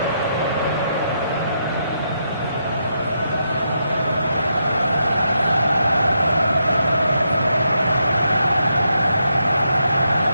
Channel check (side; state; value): both; inverted; correlation -0.81